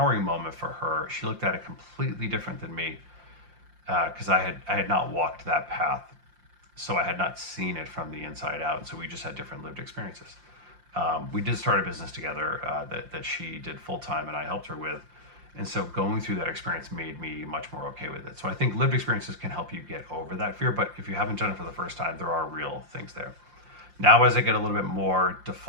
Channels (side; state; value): left; late; 5.7 ms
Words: moment for her, she looked at it completely different than me because I had not walked that path. So I had not seen it from the inside out. So we just had different lived experiences. We did start a business together that she did full time and I helped her with. And so going through that experience made me much more okay with it. So I think lived experiences can help you get over that fear. But if you haven't done it for the first time, there are real things there. Now, as I get a little bit more